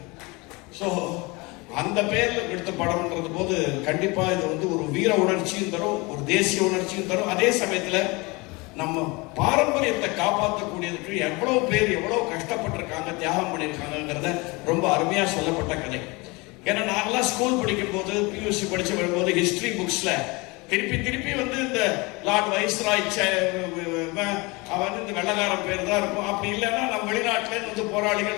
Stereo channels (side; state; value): right; quieter; 25.7 dB